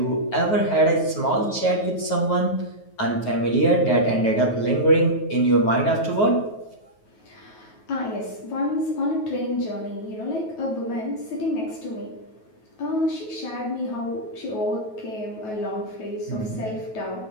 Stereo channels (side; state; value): right; late; 9.3 ms